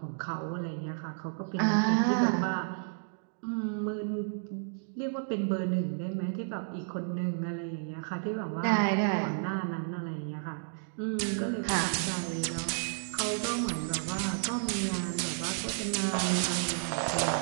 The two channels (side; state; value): left; silent; digital silence